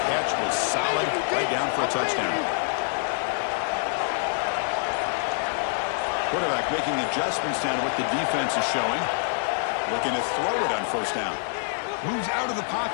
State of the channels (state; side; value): silent; right; 59 dB below the other